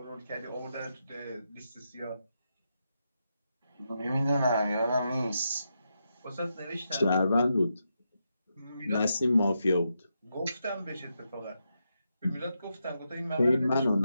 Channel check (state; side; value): inverted; both; correlation -0.84